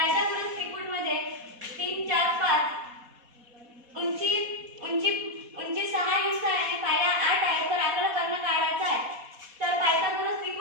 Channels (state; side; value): late; left; 4.1 ms